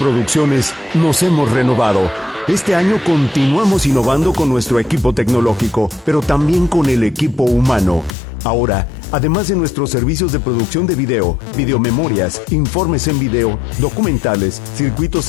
nos hemos renovado. Este año continuamos innovando con nuestro equipo tecnológico, pero también con el equipo humano. Ahora, además de nuestros servicios de producción de video, videomemorias, informes en video, documentales, circuitos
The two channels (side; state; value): right; drops out; at 8.1 s